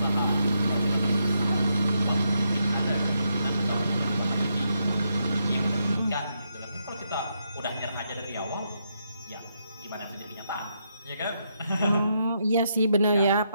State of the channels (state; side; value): inverted; both; correlation -0.80